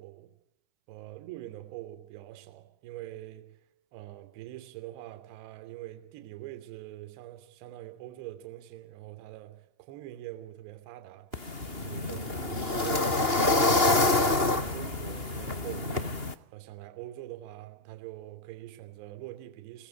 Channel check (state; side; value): late; left; 2.8 ms